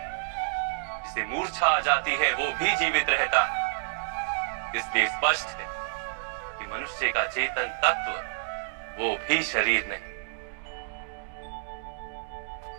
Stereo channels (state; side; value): silent; left; digital silence